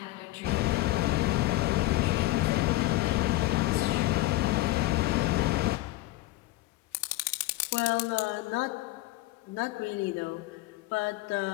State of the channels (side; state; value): right; quieter; 18.3 dB